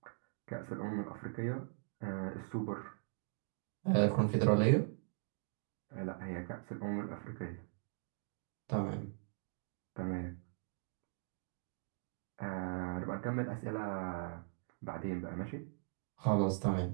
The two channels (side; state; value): left; silent; digital silence